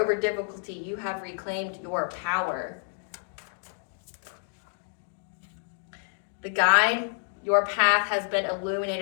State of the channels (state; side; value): silent; right; digital silence